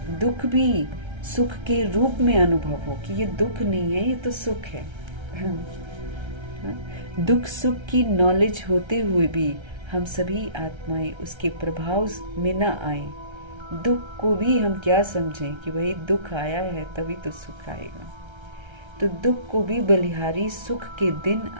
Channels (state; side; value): late; left; 1.3 ms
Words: दुख भी सुख के रूप में अनुभव हो कि ये दुख नहीं है, ये तो सुख है। दुख सुख की नॉलेज होते हुए भी हम सभी आत्माएं उसके प्रभाव में न आए। दुख को भी हम क्या समझें कि भाई दुख आया है तभी तो सुख आएगा। तो दुख को भी बलिहारी सुख के दिन